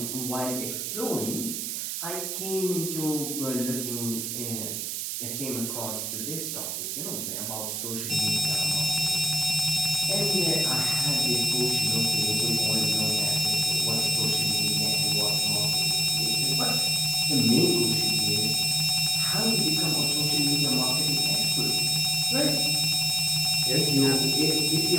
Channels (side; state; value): right; noise; hiss, 3 dB below the sound